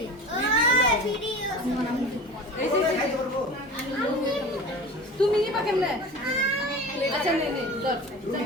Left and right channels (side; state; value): both; normal; correlation 0.35